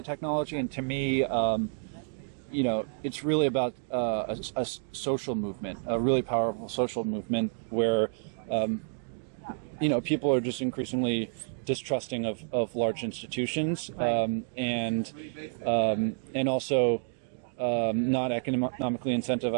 technology, and to me, it's really about a social movement, a really powerful social movement where, people are just increasingly distrusting of large institutions, and also not economically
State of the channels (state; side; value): silent; left; digital silence